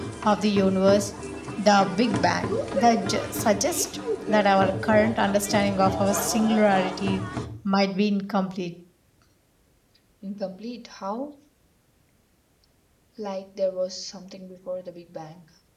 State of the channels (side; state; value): both; identical; correlation 1.00